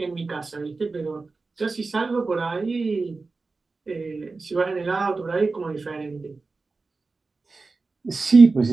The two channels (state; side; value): quieter; left; 3.9 dB